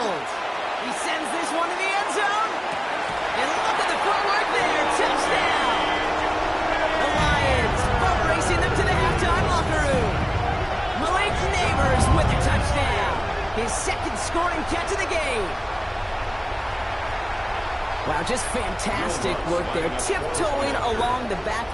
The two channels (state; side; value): identical; both; correlation 1.00